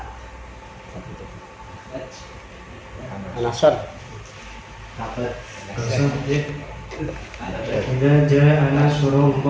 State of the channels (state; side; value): identical; both; correlation 1.00